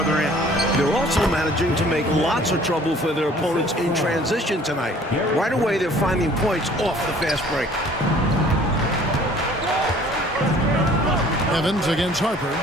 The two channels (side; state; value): both; normal; correlation 0.53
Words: end. They're also managing to make lots of trouble for their opponents in transition tonight. Right away, they're finding points off the fast break. Evans against Harper.